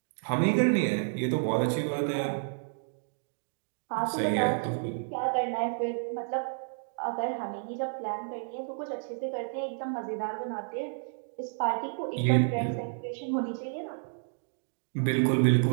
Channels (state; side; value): silent; left; digital silence